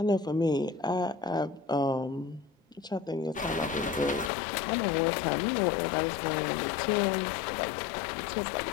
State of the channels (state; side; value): drops out; right; at 4.3 s